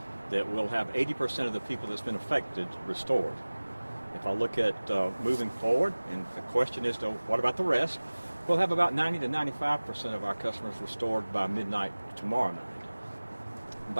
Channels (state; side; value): inverted; both; correlation -1.00